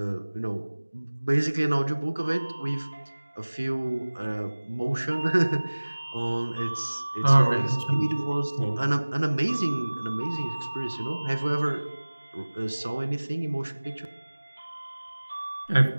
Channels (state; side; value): inverted; both; correlation -1.00